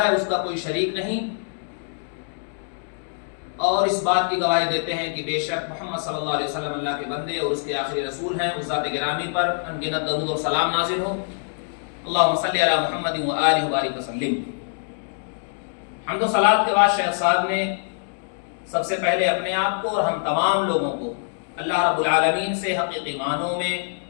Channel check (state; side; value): silent; right; digital silence